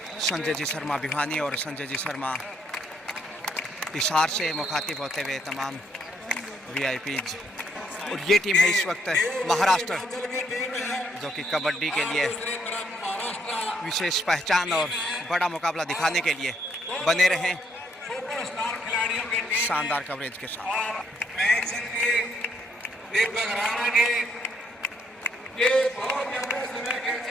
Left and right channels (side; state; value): both; normal; correlation 0.72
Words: संजय जी शर्मा भिवानी और संजय जी शर्मा हिसार से मुखातिब होते हुए तमाम वीआईपीज। और ये टीम है इस वक्त महाराष्ट्र जो कि कबड्डी के लिए विशेष पहचान और बड़ा मुकाबला दिखाने के लिए बने रहें शानदार कवरेज के साथ।